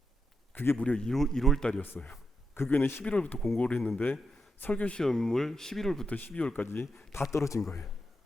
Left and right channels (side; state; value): both; normal; correlation 0.85